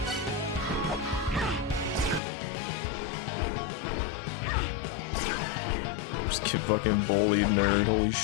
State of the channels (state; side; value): drops out; right; at 2.2 s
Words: Just get fucking bullied, nerd, holy